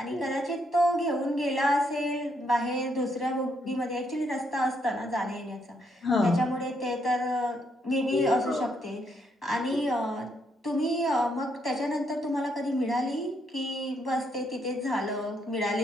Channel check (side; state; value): both; normal; correlation 0.75